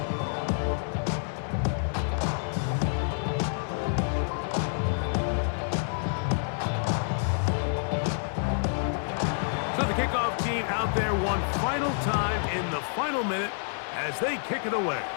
So the kickoff team out there one final time in the final minute as they kick it away.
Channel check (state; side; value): silent; right; digital silence